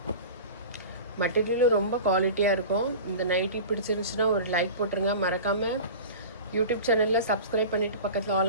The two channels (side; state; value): both; inverted; correlation -0.35